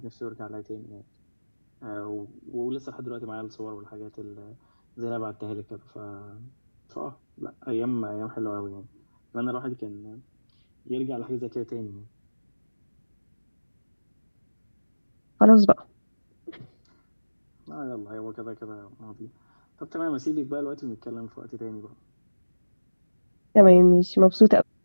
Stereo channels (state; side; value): inverted; both; correlation -1.00